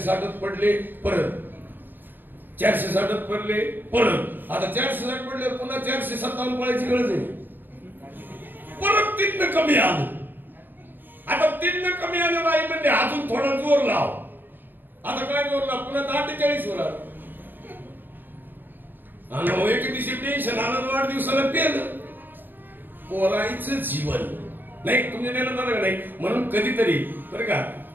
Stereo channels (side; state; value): left; late; 0.092 ms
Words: पडले, परत 460 पडले, परत आता 460 पडले, पुन्हा 457 पडायची गरज आहे. परत 3 कमी आलं. आता 3 कमी आलं नाही म्हणजे अजून थोडा जोर लाव. आता काय जोर लाव, पुन्हा 48 वर आलं. आणि एक दिवशी टेन्शन आलं, वाढदिवसाला पेलं. पोरायचं जीवन नाही तुम्ही नेलं नाही. म्हणून कधीतरी बरं का,